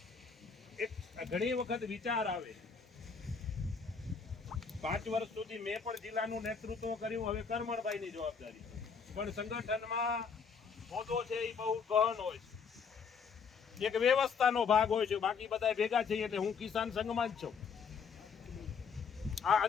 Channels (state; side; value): quieter; right; 5.8 dB